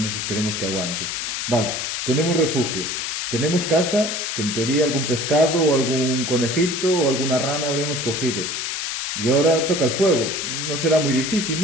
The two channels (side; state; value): left; noise; hiss, 3 dB below the sound